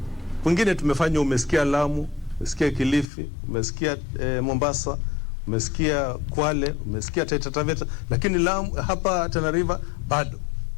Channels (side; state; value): right; drops out; at 3.1 s